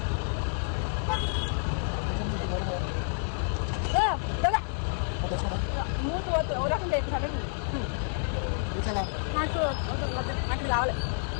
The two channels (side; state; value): right; silent; digital silence